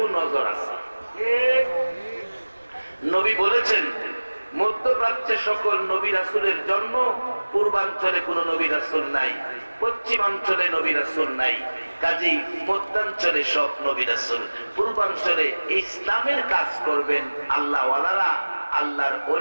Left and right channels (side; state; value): both; inverted; correlation -1.00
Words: আছে। নবী বলেছেন, মধ্যপ্রাচ্যে সকল নবী রাসূলের জন্ম, পূর্বাঞ্চলে কোন নবী রাসূল নাই, পশ্চিমাঞ্চলে নবী রাসূল নাই, কাজেই মধ্যাঞ্চলে সব নবী রাসূল। পূর্বাঞ্চলে ইসলামের কাজ করবেন আল্লাহওয়ালারা, আল্লাহর